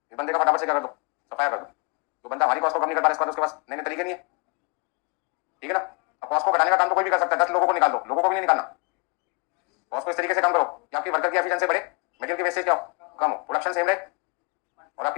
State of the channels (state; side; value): quieter; right; 31.7 dB